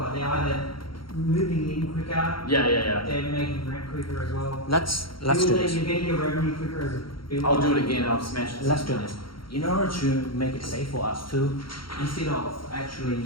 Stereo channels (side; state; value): right; late; 0.73 ms